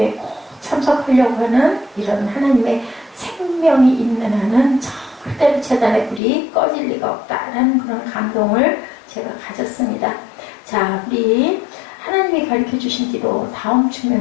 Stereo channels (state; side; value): drops out; right; at 6.2 s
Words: 꼭 참석하려고 하는 이런 하나님의 생명이 있는 한은 절대로 재단의 불이 꺼질 리가 없다라는 그런 감동을 제가 가졌습니다. 자, 우리 하나님이 가르쳐 주신 기도 다음